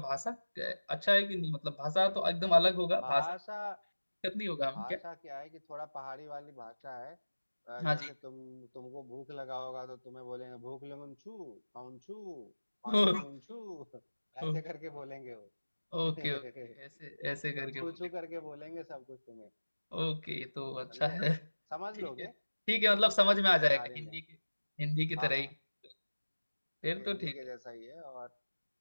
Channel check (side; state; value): both; inverted; correlation -1.00